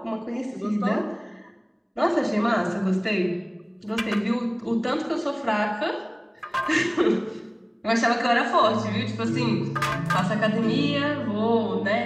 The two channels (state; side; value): identical; both; correlation 1.00